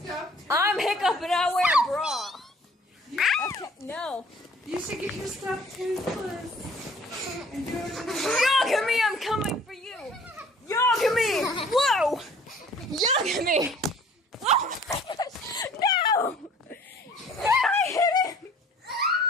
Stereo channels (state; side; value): normal; both; correlation 0.53